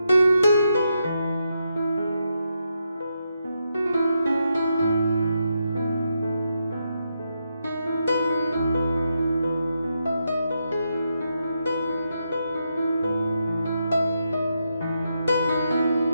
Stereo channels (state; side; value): inverted; both; correlation -0.83